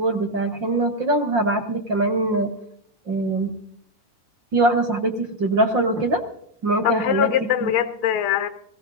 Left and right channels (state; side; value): late; left; 5.7 ms